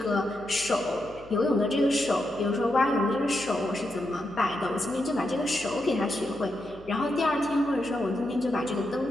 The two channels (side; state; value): left; noise; hum, 23 dB below the sound